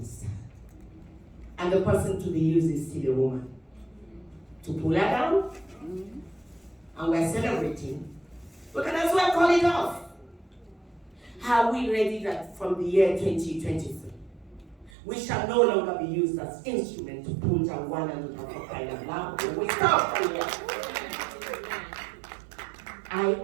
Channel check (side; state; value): left; drops out; at 14.9 s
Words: And the person to be used is still a woman. To pull her down, and we're celebrating, we can as well call it off. Are we ready that from the year 2023, we shall no longer be used as instrument to pull down one another for crying out loud? We stop here. I